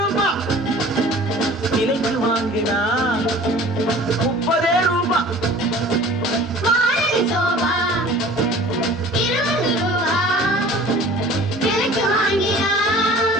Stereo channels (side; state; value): both; normal; correlation 0.46